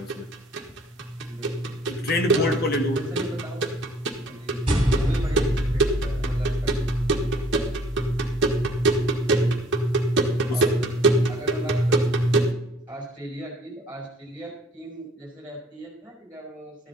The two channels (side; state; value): both; normal; correlation 0.57